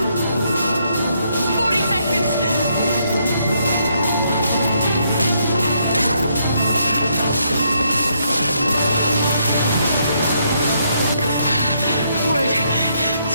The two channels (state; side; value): inverted; both; correlation -0.74